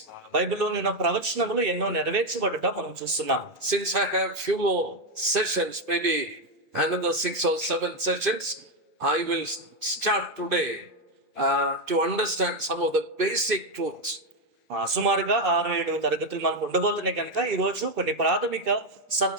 బైబిల్లో ఉన్న ప్రవచనములు ఎన్నో నెరవేర్చబడుట మనం చూస్తున్నాం. Since I have few more sessions, maybe another 6 or 7 sessions, I will start today to understand some of the basic truths. సుమారుగా 6-7 తరగతులు మనకు ఉండబోతున్నాయి కనుక ఈ రోజు కొన్ని ప్రాథమిక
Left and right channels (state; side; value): late; left; 2.5 ms